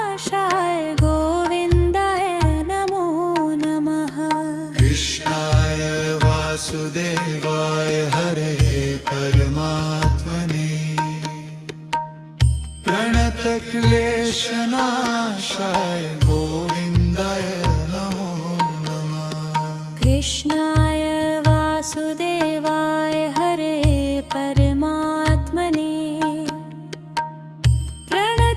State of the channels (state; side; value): identical; both; correlation 1.00